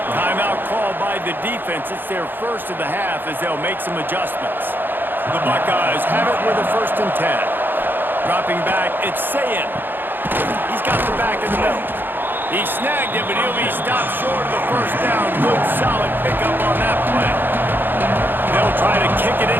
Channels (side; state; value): left; late; 0.095 ms